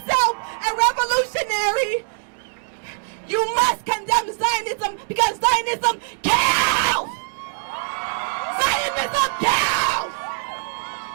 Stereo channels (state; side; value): silent; left; digital silence